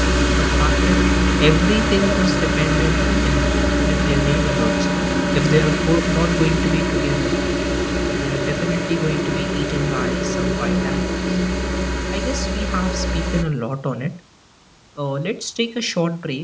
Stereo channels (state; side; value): identical; both; correlation 1.00